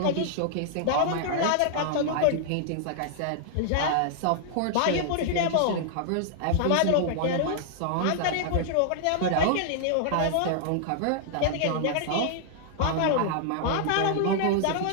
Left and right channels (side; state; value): both; different; correlation -0.01